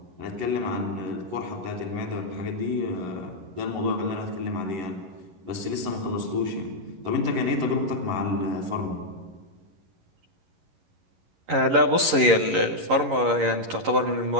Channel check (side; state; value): left; late; 11 ms